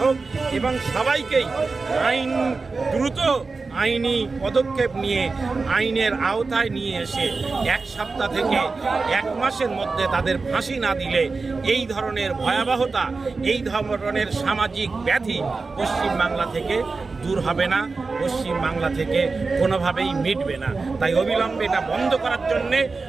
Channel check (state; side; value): quieter; left; 4.1 dB